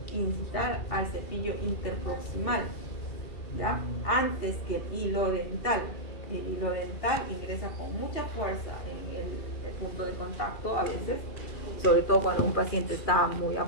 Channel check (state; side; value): late; right; 2.4 ms